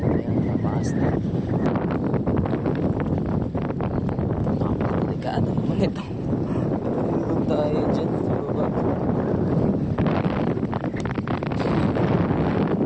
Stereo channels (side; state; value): both; identical; correlation 1.00